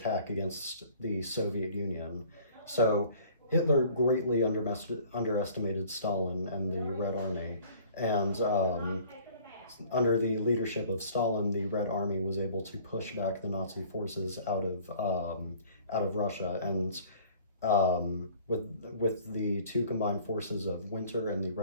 against the Soviet Union. So Hitler greatly underestimated Stalin and the Red Army, and under the leadership of Stalin, the Red Army was able to push back the Nazi forces out of Russia, and with the two combined forces of Winter and the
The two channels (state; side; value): inverted; both; correlation -0.51